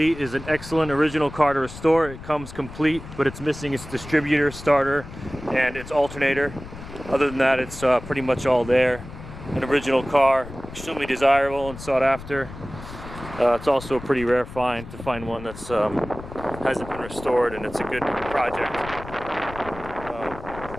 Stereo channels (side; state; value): left; noise; rumble, 13 dB below the sound